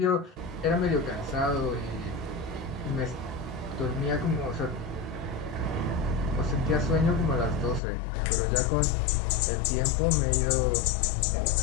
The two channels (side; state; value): right; drops out; at 7.8 s